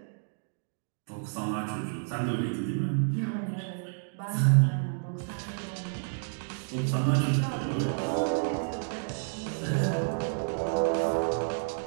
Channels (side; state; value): left; silent; digital silence